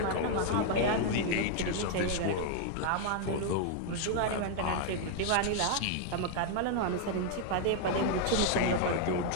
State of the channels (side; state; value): both; different; correlation 0.00